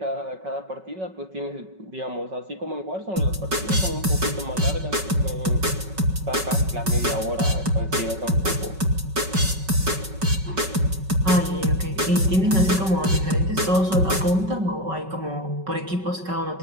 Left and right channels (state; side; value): late; left; 5.3 ms